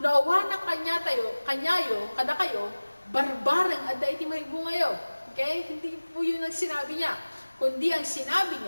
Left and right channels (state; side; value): inverted; both; correlation -1.00